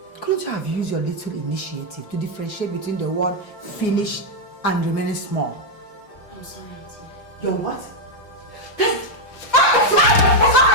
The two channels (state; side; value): late; right; 5.8 ms